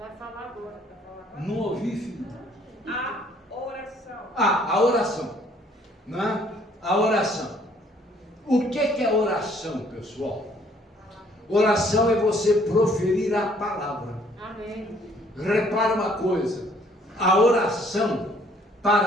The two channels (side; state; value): both; normal; correlation 0.62